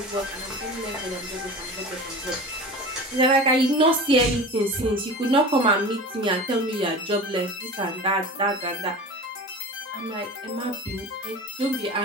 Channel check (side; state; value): both; normal; correlation 0.34